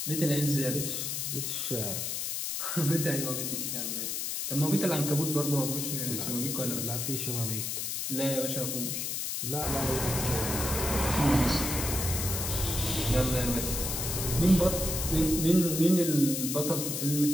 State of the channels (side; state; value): left; noise; hiss, 2 dB below the sound